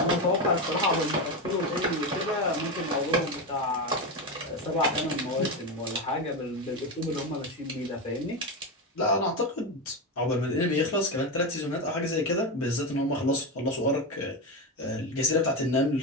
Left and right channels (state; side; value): normal; both; correlation 0.15